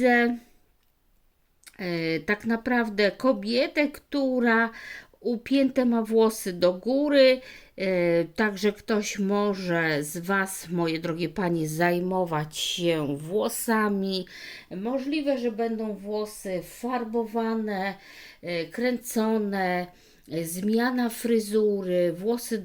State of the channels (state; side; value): identical; both; correlation 1.00